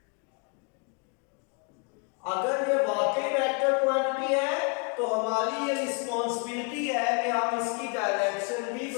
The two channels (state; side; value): quieter; right; 35.1 dB